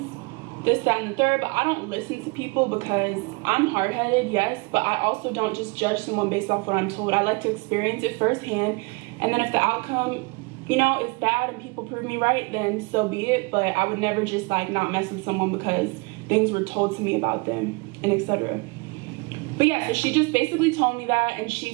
this, that, and the third. But I don't listen to people because I'm hard-headed, yes. But I also don't just judge someone based off what I'm told. I like to experience it firsthand. And then if the outcome, you know, is bad and people prove me right, then so be it. But I would never just, like, not mess with someone because things were told to me about them and etc. But yeah, so she just basically told me that, and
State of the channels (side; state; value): left; quieter; 28.9 dB